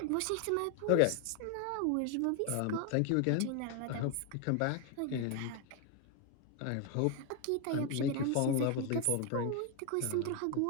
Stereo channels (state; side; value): different; both; correlation 0.01